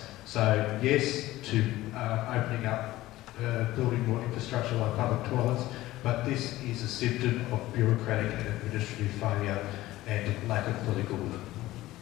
So yes to opening up, building more infrastructure like public toilets, but this is a symptom of bureaucratic and administrative failure and lack of political will.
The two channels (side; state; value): right; quieter; 16.7 dB